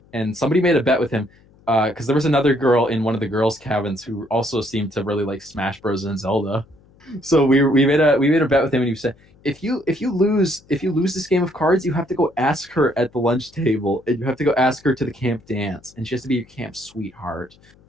and somebody made a bet with him because there was another girl in one of the girls' cabins who also seemed to really like Smash Bros. And Zelda. So we made a bet with him, and he said, if you lose this game of cards, you have to go ask her at the lunch table, and you have to go ask her to the camp dance, and she has to be your camp sweetheart.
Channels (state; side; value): noise; left; hum, 29 dB below the sound